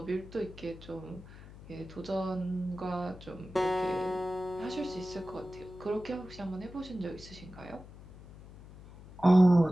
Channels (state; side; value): noise; left; hum, 18 dB below the sound